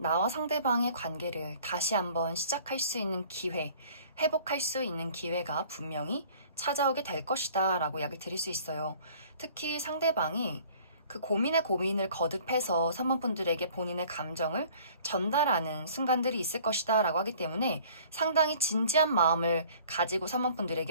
상대방의 관계를 다시 한번 시작할 수 있는 기회, 회복할 수 있는 기회가 분명히 찾아오게 될 것이다 라고 이야기 드릴 수 있어요. 특히 상대방이 그 고민에 고민을 거듭해서 3번 분들에게 본인의 감정을 전달하는 순간들이 있을 것이다 라고 하기 때문에 상당히 진지한 마음을 가지고 3번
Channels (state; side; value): inverted; both; correlation -0.52